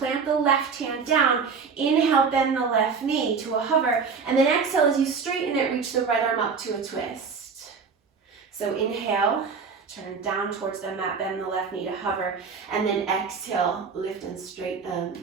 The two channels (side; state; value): left; quieter; 5.5 dB